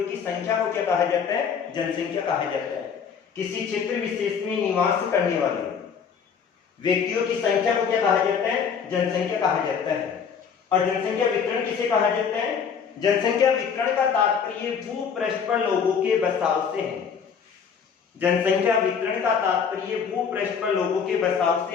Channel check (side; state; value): right; quieter; 6.7 dB